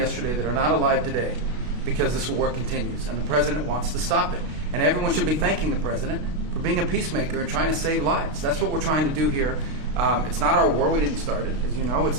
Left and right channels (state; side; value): late; left; 32 ms